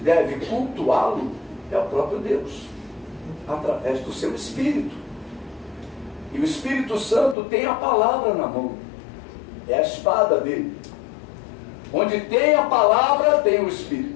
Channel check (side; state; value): right; drops out; at 7.4 s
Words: cultuá-lo é o próprio Deus, através do seu Espírito. E o Espírito Santo tem a palavra na mão, é a espada dele. Onde tem a palavra, tem o